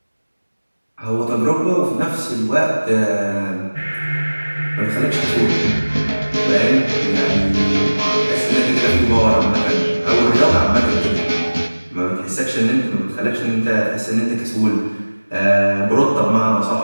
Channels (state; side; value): inverted; both; correlation -1.00